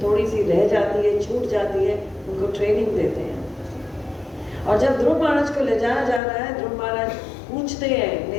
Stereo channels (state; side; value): drops out; right; at 6.2 s